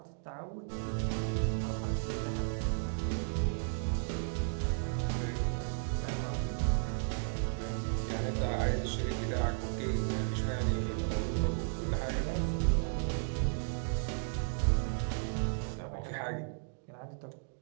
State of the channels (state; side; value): silent; left; digital silence